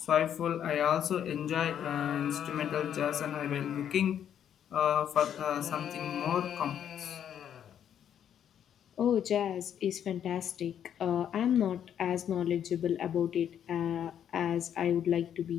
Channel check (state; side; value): quieter; right; 9.4 dB